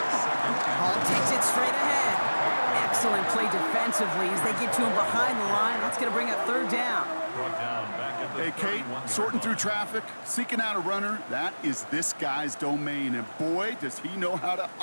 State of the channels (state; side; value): inverted; both; correlation -1.00